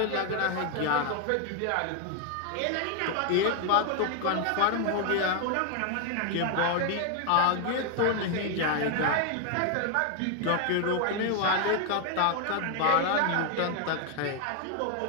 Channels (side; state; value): both; different; correlation 0.01